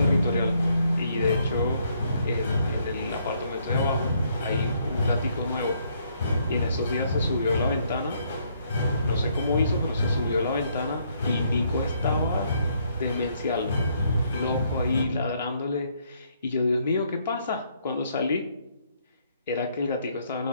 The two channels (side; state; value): both; inverted; correlation -0.70